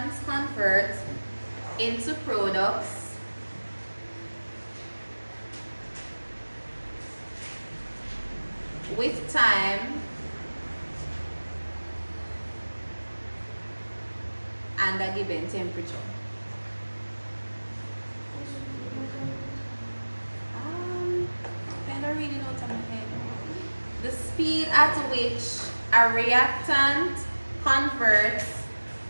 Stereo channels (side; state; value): both; inverted; correlation -1.00